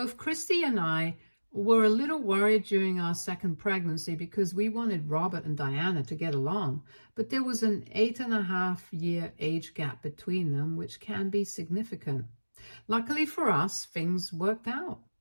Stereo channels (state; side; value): inverted; both; correlation -1.00